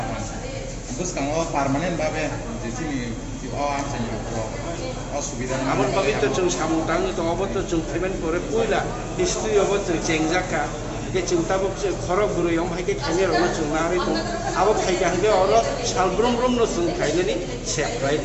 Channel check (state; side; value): identical; both; correlation 1.00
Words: terus kalau permanen babe di sini di असुविधा आमन पवित्र जों सामुदां दङबो जों पेमेन्ट करे पुइला हिस्ट्री अब जों चेंजाका के चिंताबो खरक गुरुयम हायके खाने रनो जों नारि दं आबो फायगा हगे अर सालब्रम ब्रम न जों खायनानि सेफ्राय